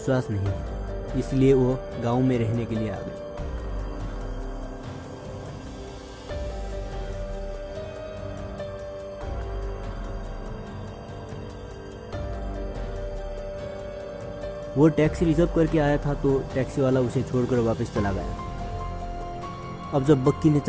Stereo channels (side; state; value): both; identical; correlation 1.00